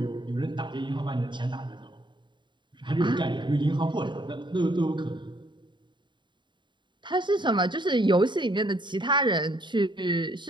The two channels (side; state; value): left; late; 0.23 ms